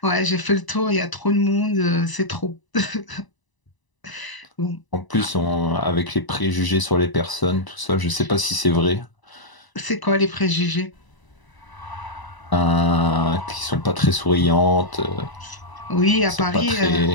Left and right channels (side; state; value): right; late; 1.0 ms